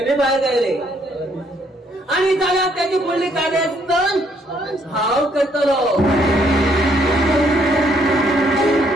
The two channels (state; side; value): normal; both; correlation 0.69